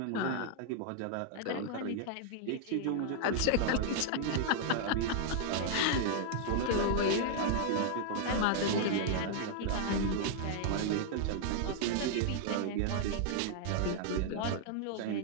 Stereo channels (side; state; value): both; different; correlation -0.01